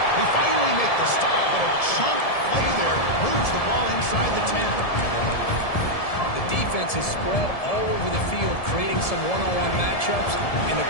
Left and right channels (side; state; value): right; late; 1.7 ms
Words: finally make the stop, but a chunk play there moves the ball inside the 10. Defense is spread all over the field, creating some one-on-one matchups, and the